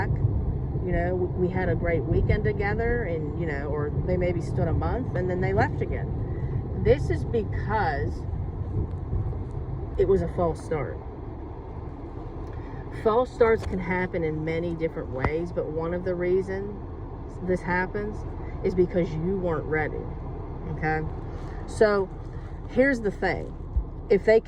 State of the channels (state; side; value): identical; both; correlation 1.00